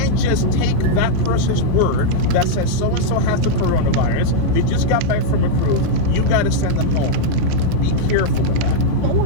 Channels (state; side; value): different; both; correlation -0.02